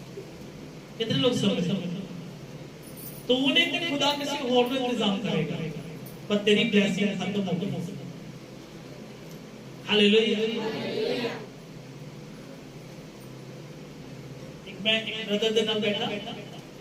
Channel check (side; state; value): both; identical; correlation 1.00